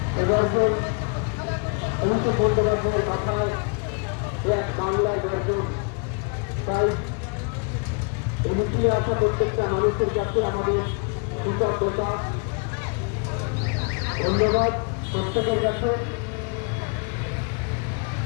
গর্জন অভিষেক বন্দ্যোপাধ্যায়ের কথায় এক বাংলার গর্জন। তাই এই মিছিলে আসা প্রত্যেকটা মানুষের কাছে আমাদের কৃতজ্ঞতা, ধন্যবাদ প্রত্যেকের কাছে।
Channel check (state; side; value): quieter; right; 35.0 dB